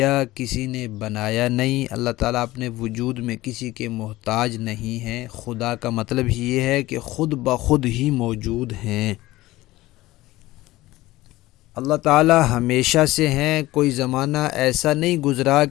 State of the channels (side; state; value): right; quieter; 17.8 dB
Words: کسی نے بنایا نہیں۔ اللہ تعالیٰ اپنے وجود میں کسی کے محتاج نہیں ہیں۔ خدا کا مطلب یہ ہے کہ خود بخود ہی موجود ہیں۔ اللہ تعالیٰ ہمیشہ سے ہیں، کوئی زمانہ ایسا نہیں گزرا